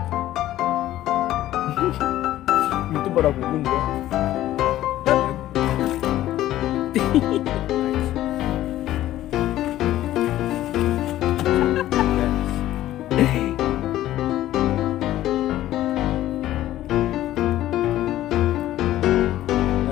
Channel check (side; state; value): right; quieter; 14.0 dB